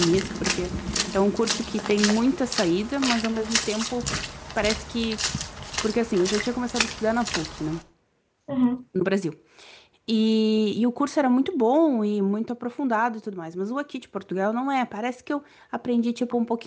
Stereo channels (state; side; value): identical; both; correlation 1.00